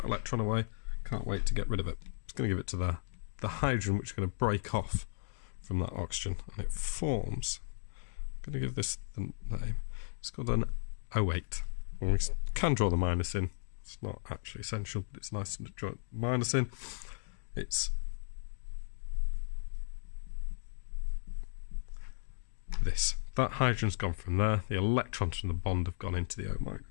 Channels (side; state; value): right; silent; digital silence